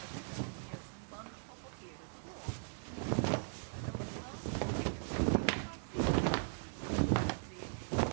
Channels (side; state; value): left; silent; digital silence